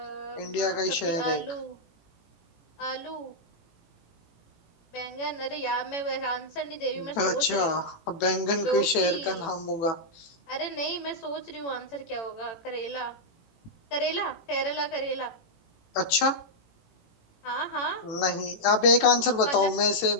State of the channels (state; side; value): late; right; 18 ms